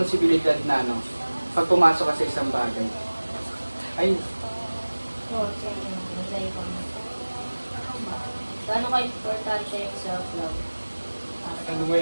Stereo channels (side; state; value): both; inverted; correlation -1.00